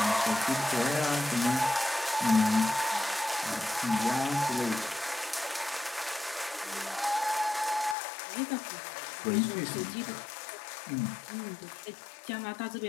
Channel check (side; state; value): right; drops out; at 8.0 s